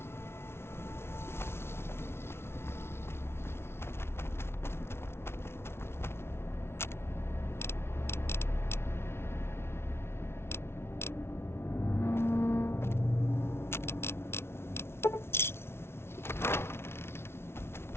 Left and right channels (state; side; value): late; right; 0.12 ms